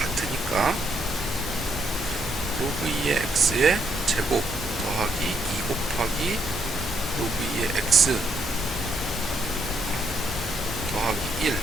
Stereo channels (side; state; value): both; normal; correlation 0.74